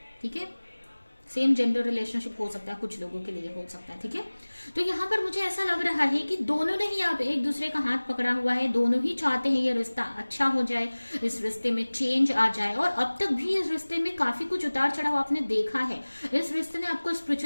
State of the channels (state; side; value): inverted; both; correlation -1.00